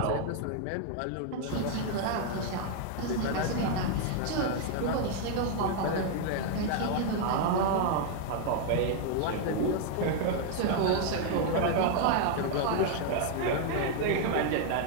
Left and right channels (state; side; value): different; both; correlation 0.00